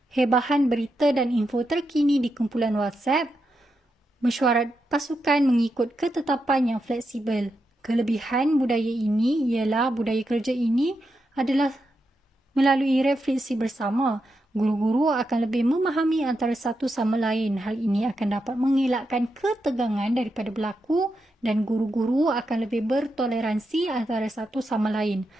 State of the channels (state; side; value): normal; both; correlation 0.86